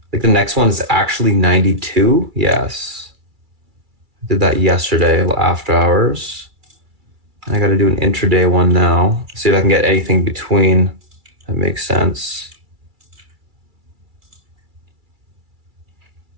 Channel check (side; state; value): left; late; 2.3 ms